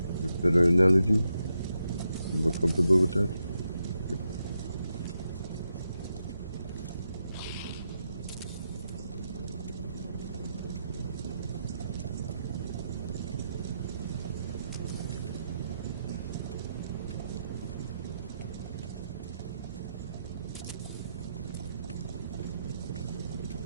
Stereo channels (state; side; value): inverted; both; correlation -0.83